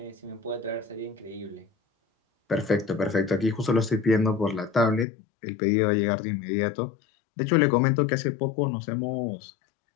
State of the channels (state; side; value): drops out; right; at 5.1 s